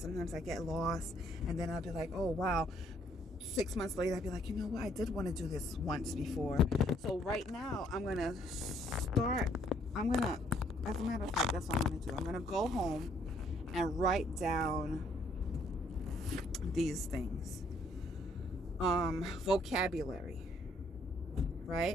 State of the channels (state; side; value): normal; both; correlation 0.66